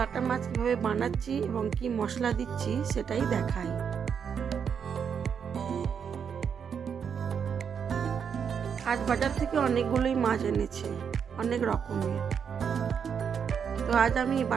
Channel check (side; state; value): left; quieter; 7.2 dB